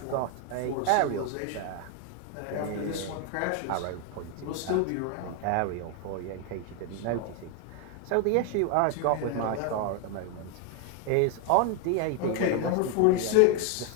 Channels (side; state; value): both; different; correlation 0.01